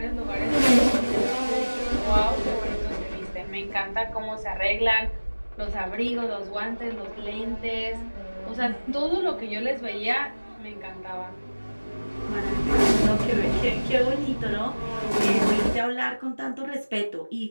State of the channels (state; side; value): inverted; both; correlation -1.00